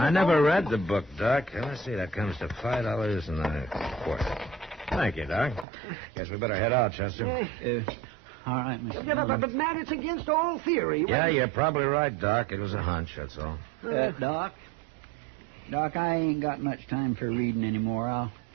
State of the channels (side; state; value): left; drops out; at 5.7 s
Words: never read the book, Doc. Let's see, that comes to $5 and a quarter. Thank you, Doc. Guess we better head out, Chester. All right, Mr. Yeah, but, Matt, it's against all theory. Yeah, you're probably right, Doc. It was a hunch, that's all. Doc, I ain't got much time for reading anymore. I'll